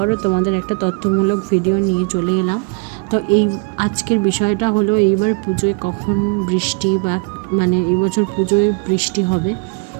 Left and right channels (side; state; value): left; quieter; 34.8 dB